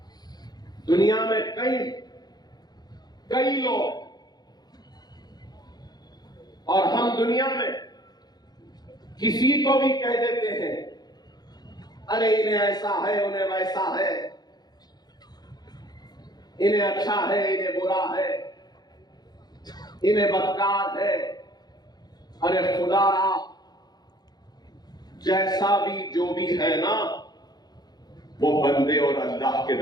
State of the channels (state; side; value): late; right; 0.20 ms